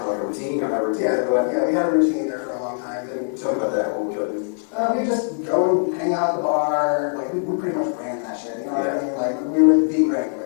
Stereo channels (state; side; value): silent; right; digital silence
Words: of like a routine? You have a routine? yeah, we had a routine there for a long time. And Tell me about that. What would you do? we just go and hang out at the bar. Like, we pretty much ran that shit, you know what I mean? Like, we were the